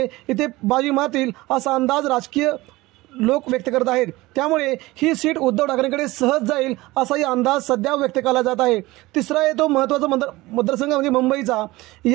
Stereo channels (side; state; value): left; quieter; 19.8 dB